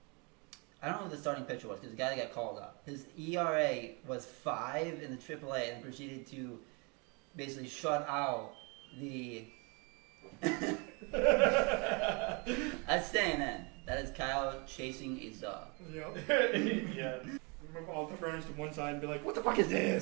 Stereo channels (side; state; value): left; quieter; 31.2 dB